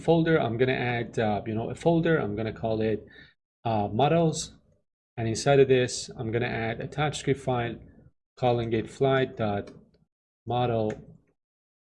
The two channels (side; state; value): both; identical; correlation 1.00